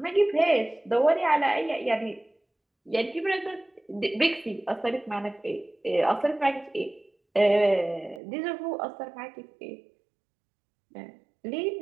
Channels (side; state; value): left; drops out; at 8.2 s